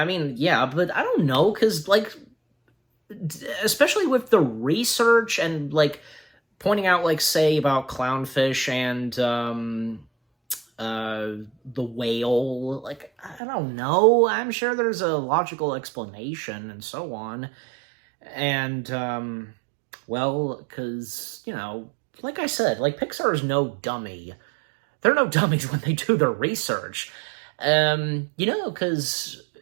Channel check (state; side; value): drops out; left; at 13.4 s